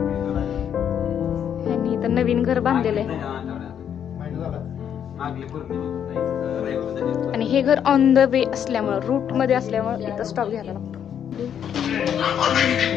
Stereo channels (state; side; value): quieter; right; 8.8 dB